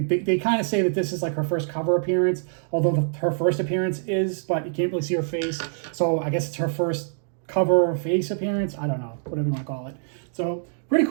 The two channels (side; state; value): left; silent; digital silence